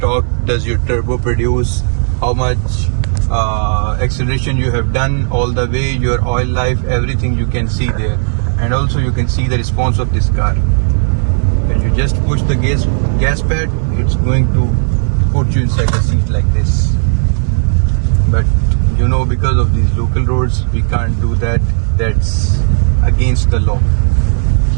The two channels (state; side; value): silent; left; digital silence